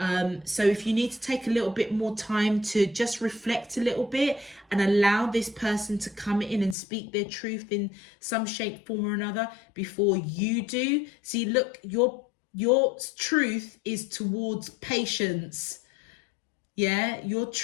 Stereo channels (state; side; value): drops out; right; at 6.8 s